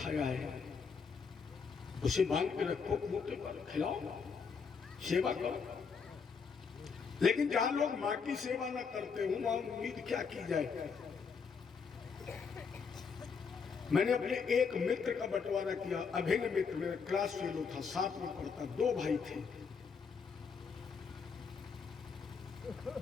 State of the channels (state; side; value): quieter; right; 5.7 dB